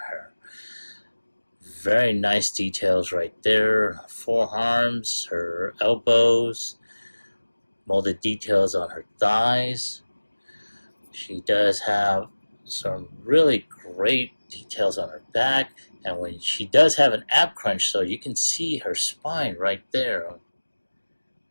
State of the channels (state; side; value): inverted; both; correlation -1.00